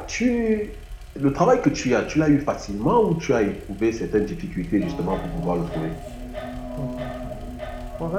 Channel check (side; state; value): both; identical; correlation 1.00